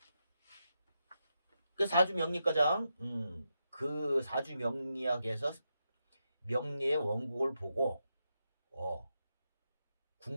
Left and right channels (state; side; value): inverted; both; correlation -0.85